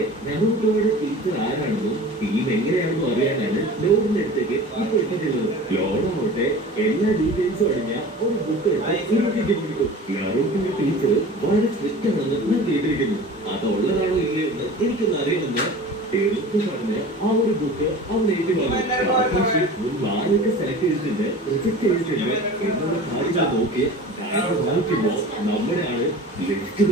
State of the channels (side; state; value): both; normal; correlation 0.38